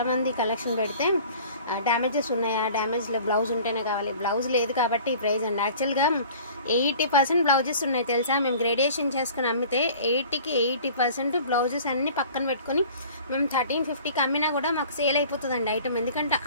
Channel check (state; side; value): inverted; both; correlation -0.46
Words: కలెక్షన్ పెడితే డ్యామేజెస్ ఉన్నాయా, డ్యామేజ్ బ్లౌజ్ ఉంటేనే కావాలి, బ్లౌజ్ లేదు కాబట్టి ఈ ప్రైస్ అండి. యాక్చువల్గా 80% బ్లౌజెస్ ఉన్నాయి తెలుసా. మేము గ్రేడేషన్ చేసుకుని అమ్మితే 80కి 80% బ్లౌజెస్ అన్ని పక్కన పెట్టుకొని మేము 1350కి అమ్మినా కూడా మాకు సేల్ అయిపోతుందండి ఐటమ్. ఎందుకంటే